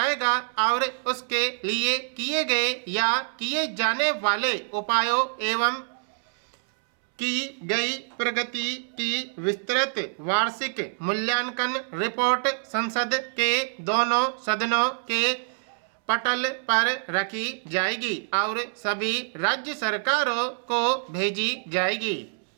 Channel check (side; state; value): left; silent; 61 dB below the other